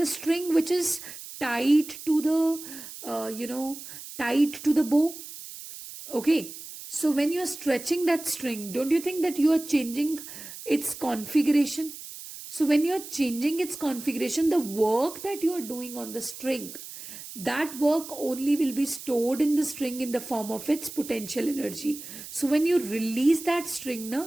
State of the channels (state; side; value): noise; right; hiss, 13 dB below the sound